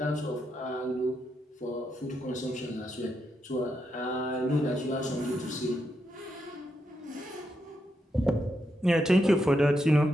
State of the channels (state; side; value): normal; both; correlation 0.82